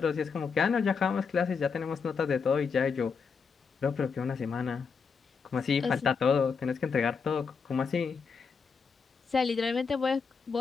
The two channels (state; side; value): quieter; right; 5.6 dB